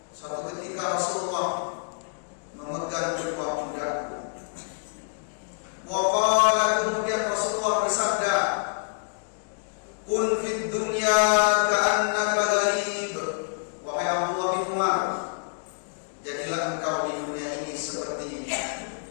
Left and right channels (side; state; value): right; silent; digital silence